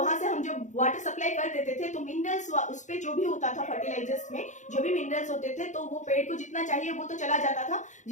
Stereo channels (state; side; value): late; right; 0.35 ms